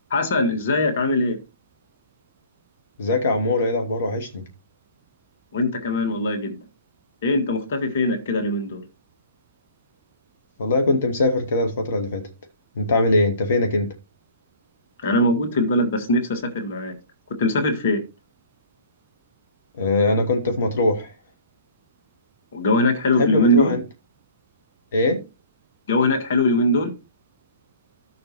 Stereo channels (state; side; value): inverted; both; correlation -0.47